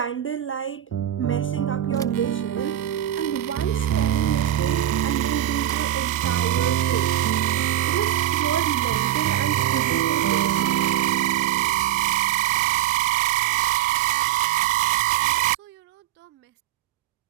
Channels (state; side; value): quieter; left; 12.5 dB